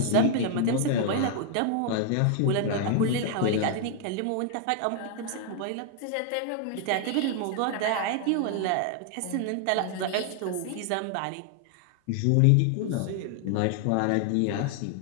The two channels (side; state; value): both; different; correlation 0.00